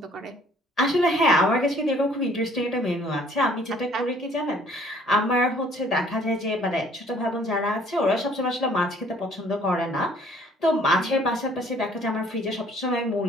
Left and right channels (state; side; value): normal; both; correlation 0.58